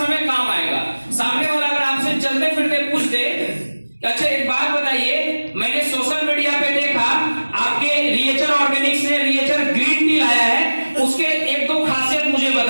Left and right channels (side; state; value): both; inverted; correlation -1.00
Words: काम आएगा। सामने वाला अगर आपसे चलते फिरते पूछ दे अच्छा एक बात बताइए, मैंने सोशल मीडिया पे देखा आपके रिएचर ऑर्गेनिक्स ने रिएचर ग्रीन टी लाया है, उसके 1-2 खासियत मुझे